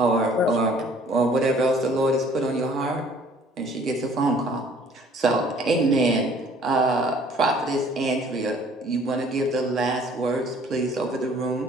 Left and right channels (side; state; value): both; normal; correlation 0.56